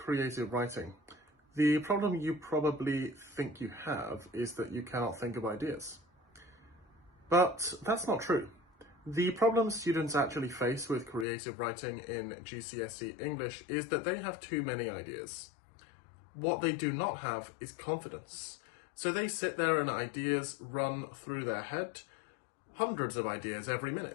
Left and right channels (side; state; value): right; drops out; at 11.2 s